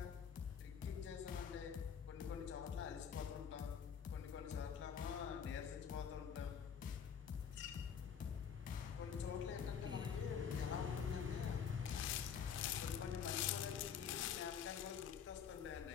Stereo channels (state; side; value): quieter; right; 7.4 dB